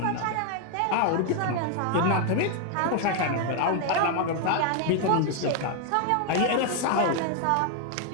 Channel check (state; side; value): different; both; correlation 0.01